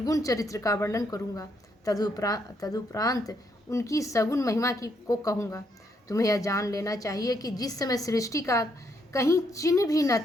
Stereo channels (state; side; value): normal; both; correlation 0.74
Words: चरित्र का वर्णन करूँगा। तदुपरांत उनकी सगुण महिमा को कहूँगा। तुम्हें यह जान लेना चाहिए कि जिस समय सृष्टि का कहीं चिन्ह भी न